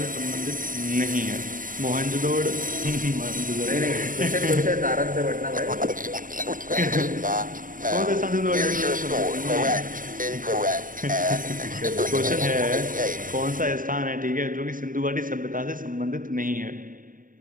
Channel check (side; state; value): left; late; 0.39 ms